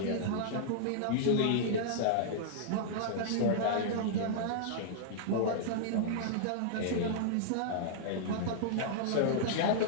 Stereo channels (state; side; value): different; both; correlation -0.02